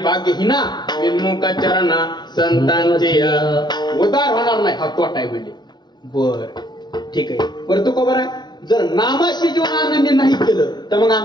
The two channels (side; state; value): right; late; 0.21 ms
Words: विनमुख चरणा संतांचे उद्धार होणार नाही. हा तोटा आहे म्हणले. बर ठीक आहे. बरं तो खबर आहे जर नामाशी जीवन आनंद नाही केलं तर मग